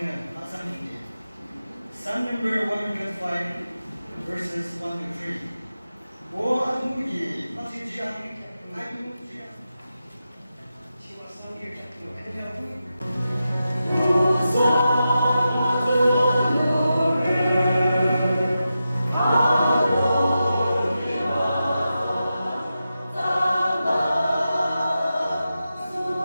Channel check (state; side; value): inverted; both; correlation -0.91